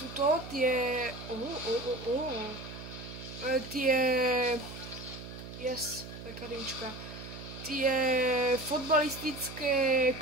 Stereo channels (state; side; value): noise; right; hum, 12 dB below the sound